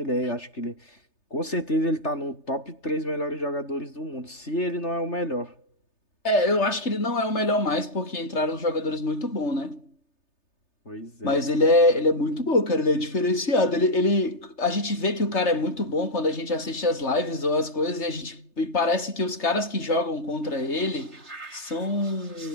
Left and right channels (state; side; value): late; right; 3.3 ms